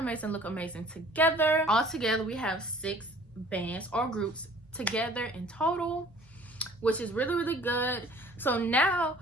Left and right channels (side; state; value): both; normal; correlation 0.51